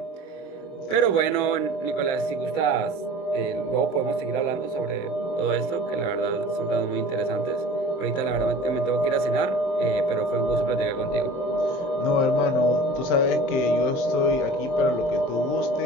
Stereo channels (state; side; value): late; right; 23 ms